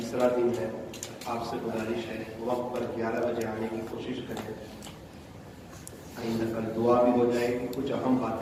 دن ہے، آپ سے گزارش ہے وقت پر 11 بجے آنے کی کوشش کریں۔ آئندہ کل دعا بھی ہو جائے گی، کچھ اہم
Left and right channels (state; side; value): identical; both; correlation 1.00